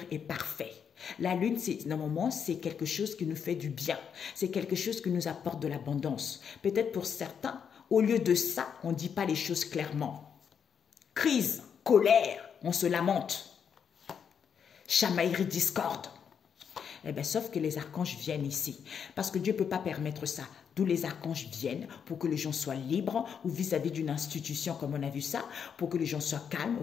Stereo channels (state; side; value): quieter; right; 7.3 dB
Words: est parfait. La lune, normalement, c'est quelque chose qui nous fait du bien. C'est quelque chose qui nous apporte de l'abondance. Peut-être pour certains, au lieu de ça, on ne dit pas les choses clairement. Crise, colère, on se lamente. Chamaillerie, discorde. Eh bien, sauf que les archanges viennent ici. Parce que Dieu ne peut pas permettre ça. D'où les archanges viennent pour que les gens soient libres ou vis-à-vis d'une institution comme on a vu ça, pour que les gens soient calmes,